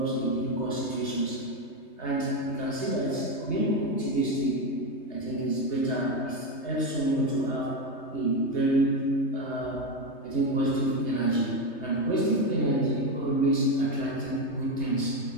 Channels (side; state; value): right; late; 3.2 ms